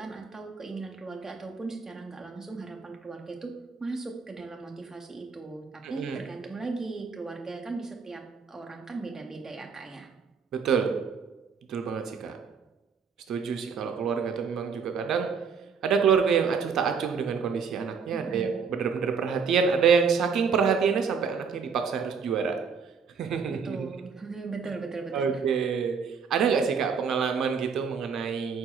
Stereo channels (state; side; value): quieter; left; 5.9 dB